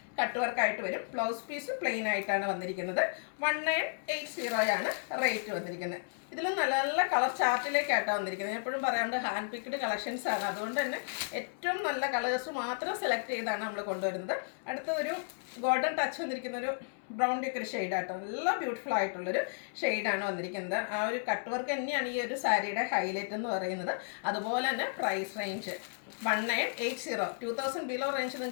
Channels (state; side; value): silent; right; 56 dB below the other